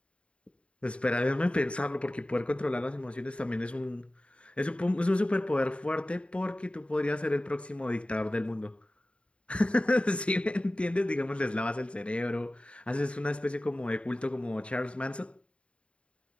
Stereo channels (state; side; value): late; right; 0.059 ms